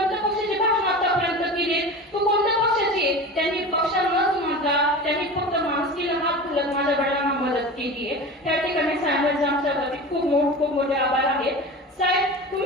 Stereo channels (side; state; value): both; normal; correlation 0.31